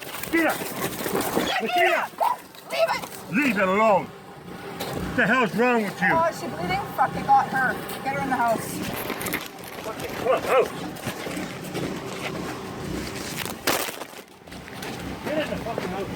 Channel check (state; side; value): identical; both; correlation 1.00